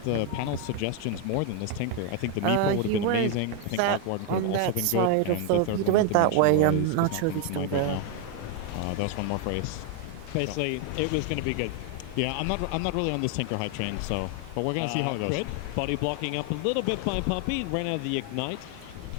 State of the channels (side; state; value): both; different; correlation 0.01